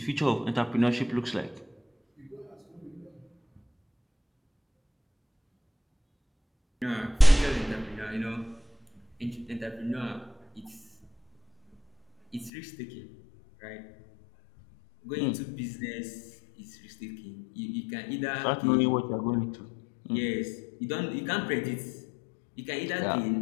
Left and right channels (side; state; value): right; drops out; at 12.5 s